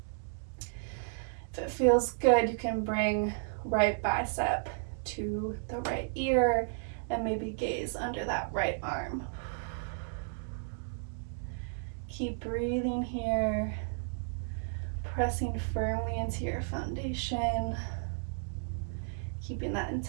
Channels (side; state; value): left; silent; digital silence